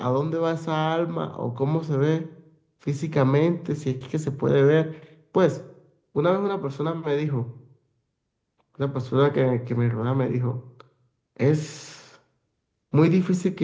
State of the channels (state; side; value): identical; both; correlation 1.00